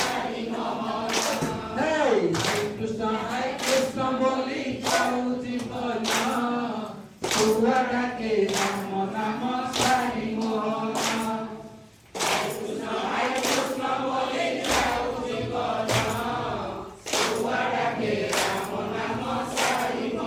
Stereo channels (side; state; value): both; identical; correlation 1.00